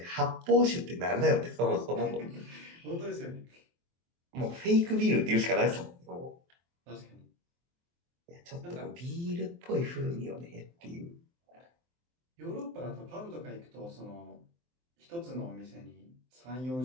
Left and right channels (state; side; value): late; left; 23 ms